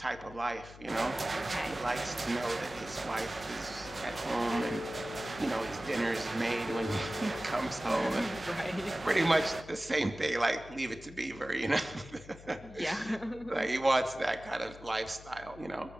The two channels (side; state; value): left; noise; hum, 18 dB below the sound